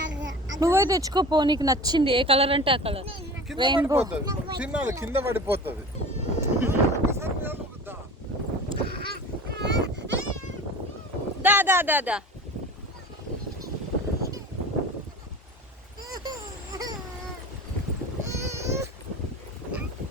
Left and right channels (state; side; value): normal; both; correlation 0.37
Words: నువ్వే తెచ్చుకోపో, నీకు నచ్చింది ఏ కలర్ అంటే ఆ కలర్. రెయిన్బో కింద పడిపోతుంది. దా దా దా దా.